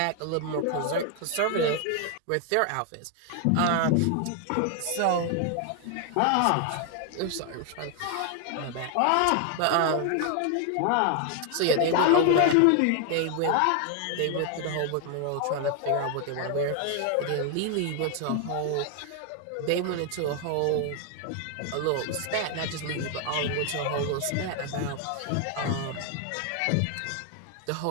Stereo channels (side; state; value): both; different; correlation 0.00